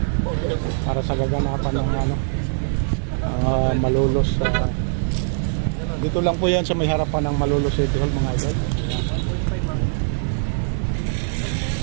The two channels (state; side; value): silent; left; digital silence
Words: para sa gaganapan ng Malolos. Dito lang po yan sa may harapan ng Malolos City Hall mga idol.